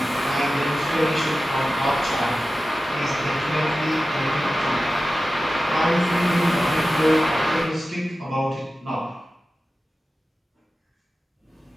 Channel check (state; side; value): normal; both; correlation 0.94